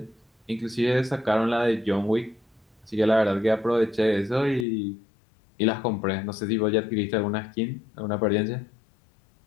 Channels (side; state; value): right; drops out; at 4.7 s